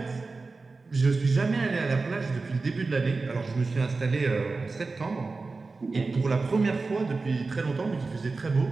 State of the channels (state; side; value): quieter; left; 3.9 dB